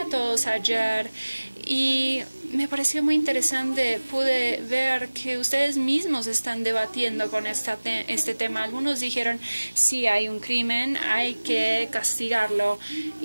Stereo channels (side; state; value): both; inverted; correlation -1.00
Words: todos ayer y me pareció muy interesante. Pude ver que ustedes mismos están debatiendo con este tema. Algunos dijeron, sí, hay un crimen, hay que castigarlo.